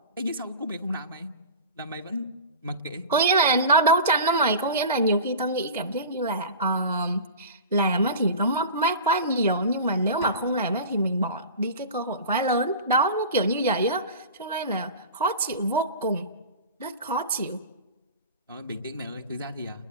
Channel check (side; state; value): both; inverted; correlation -0.34